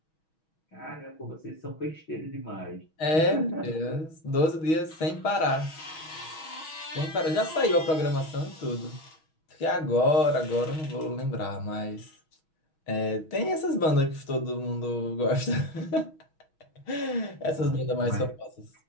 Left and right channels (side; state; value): right; late; 6.2 ms